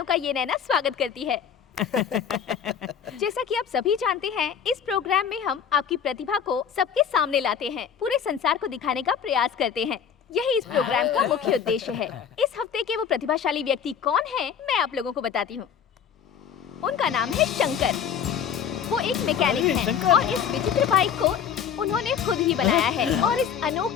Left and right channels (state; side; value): quieter; right; 7.9 dB